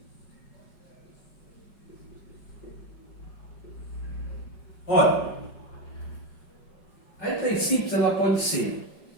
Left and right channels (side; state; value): right; late; 5.4 ms